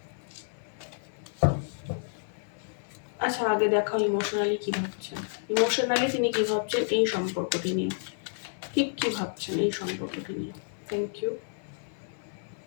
আচ্ছা, আগে দেখাও ইমোশনালি কী ভাবছেন। ইমোশনালি তিনি কী ভাবছেন এই সম্পর্কটি নিয়ে, ঠিক কী ভাবছেন এই সম্পর্কটি নিয়ে। Thank you.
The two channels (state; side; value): silent; right; 58 dB below the other